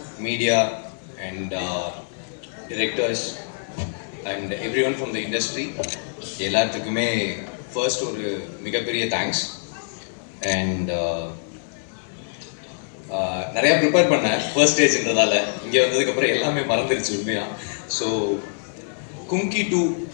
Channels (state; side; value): silent; right; 63 dB below the other